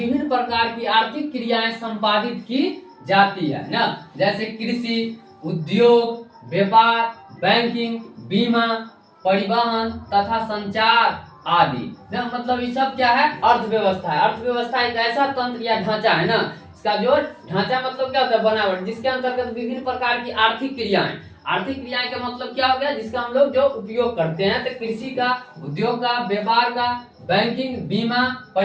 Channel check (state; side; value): identical; both; correlation 1.00